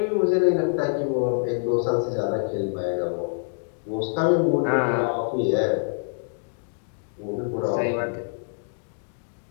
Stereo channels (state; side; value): silent; right; digital silence